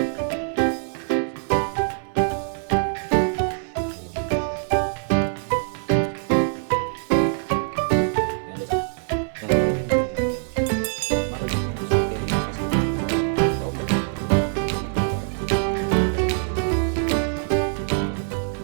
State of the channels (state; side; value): silent; left; 63 dB below the other